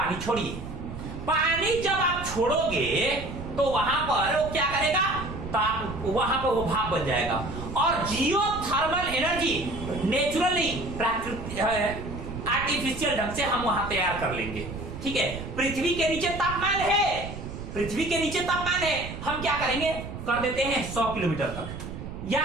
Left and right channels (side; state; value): right; noise; rumble, 9 dB below the sound